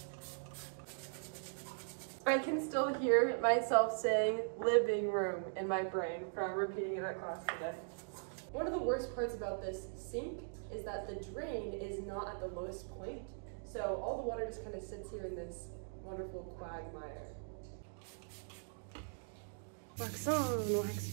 I can still hear myself saying living room in my brain from repeating it at class today. One of the worst parts about this sink is that the drain is not at the lowest point. So all the water just kind of sits here in this wonderful quagmire. Wax on,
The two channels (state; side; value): silent; left; digital silence